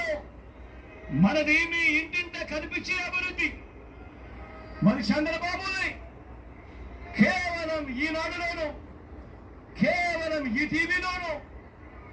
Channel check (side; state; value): both; identical; correlation 1.00